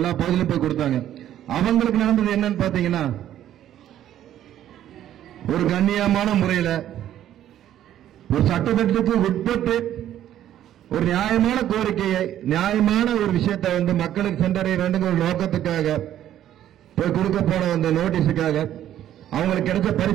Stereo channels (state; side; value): quieter; left; 11.6 dB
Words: பகுதியிலும் போய் கொடுத்தாங்க. அவங்களுக்கு நடந்தது என்னன்னு பாத்தீங்கன்னா, ஒரு கண்ணியமான முறையில ஒரு சட்டத்திட்டத்துக்கு உட்பட்டு ஒரு நியாயமான கோரிக்கையை, நியாயமான ஒரு விஷயத்தை வந்து மக்களுக்கு சென்றடைய வேண்டும் ஒரு நோக்கத்துக்காக போய் கொடுக்க போன அந்த நோட்டீஸுக்காக அவங்களுக்கு கிடைச்ச